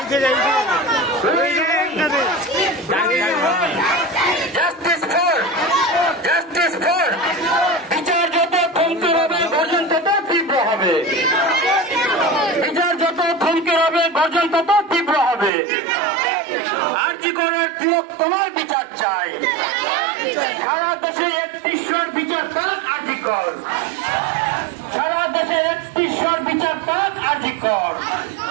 Justice for, justice for. বিচার যত থমকে হবে গর্জন তত তীব্র হবে, বিচার যত থমকে হবে গর্জন তত তীব্র হবে। আরজি করের তিলক তোমার বিচার চাই, সারা দেশে 31 বিচার পাক আরজি কর, সারা দেশে 31 বিচার পাক আরজি কর।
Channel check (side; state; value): left; drops out; at 15.5 s